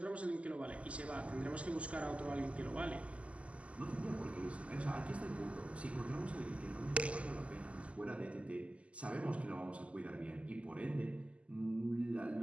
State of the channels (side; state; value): left; late; 0.062 ms